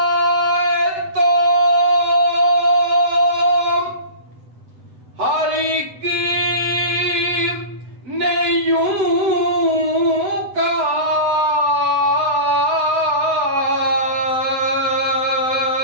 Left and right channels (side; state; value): left; late; 7.9 ms